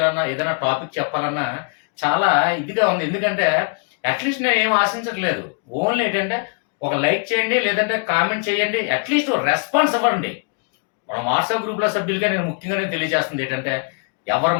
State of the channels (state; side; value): quieter; right; 37.9 dB